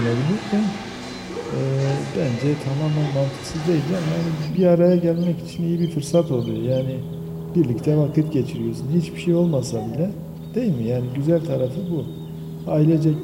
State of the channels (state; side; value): identical; both; correlation 1.00